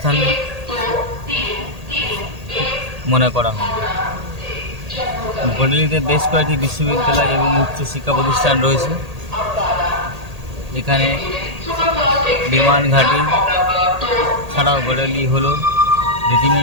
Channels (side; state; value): left; late; 1.8 ms